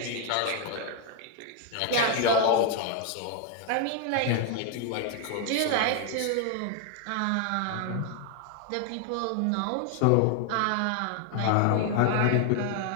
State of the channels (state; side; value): different; both; correlation 0.00